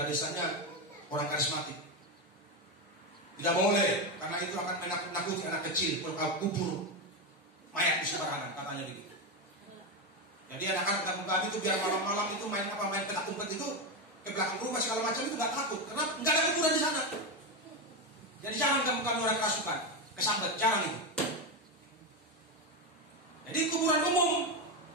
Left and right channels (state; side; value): normal; both; correlation 0.11